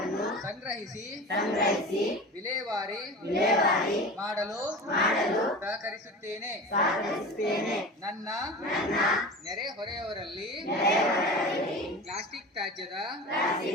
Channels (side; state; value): both; normal; correlation 0.33